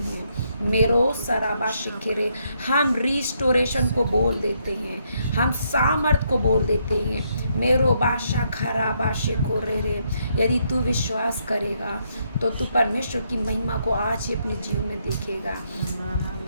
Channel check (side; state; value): both; inverted; correlation -0.75